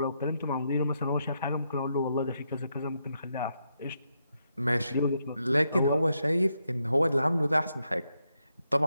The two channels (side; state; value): both; inverted; correlation -0.81